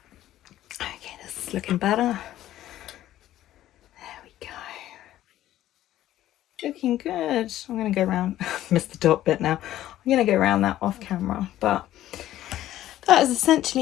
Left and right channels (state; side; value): quieter; right; 13.5 dB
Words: this is looking better. There we go. Looking good. I'm going to go around, missed the top bit now. I'm going to go around that off camera, but that is